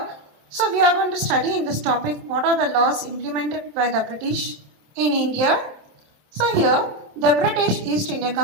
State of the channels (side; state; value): left; late; 27 ms